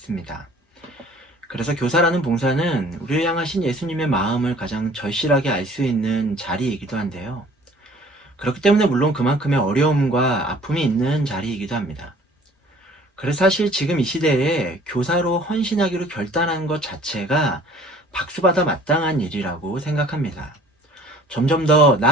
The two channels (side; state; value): both; normal; correlation 0.52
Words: 그래서 교사라는 봉사는 우리를 향하신 예수님의 마음을 가장 절실하게 알 수 있는 자리이기도 한데요. 그렇기 때문에 물론 그만큼의 어려움과 아픔이 있는 자리이기도 합니다. 그래서 사실 지금 이 시대에 교사로 헌신하기로 결단한 것 자체가 박수받아 마땅한 일이라고 생각합니다. 점점 더